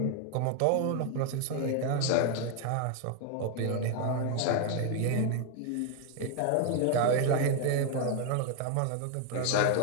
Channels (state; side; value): different; both; correlation 0.00